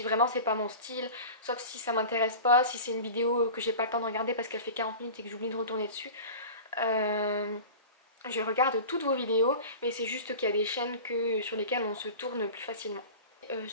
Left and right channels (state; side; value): inverted; both; correlation -0.36